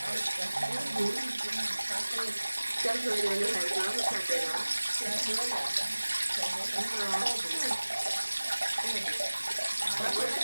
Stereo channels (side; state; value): both; inverted; correlation -1.00